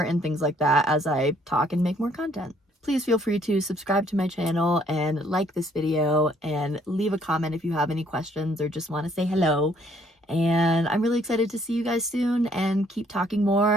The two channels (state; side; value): normal; both; correlation 0.65